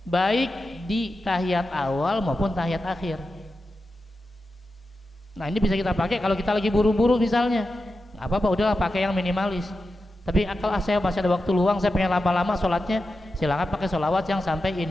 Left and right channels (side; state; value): both; normal; correlation 0.90